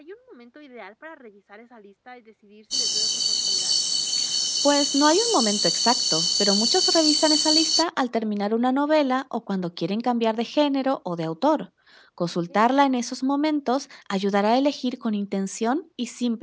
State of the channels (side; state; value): both; identical; correlation 1.00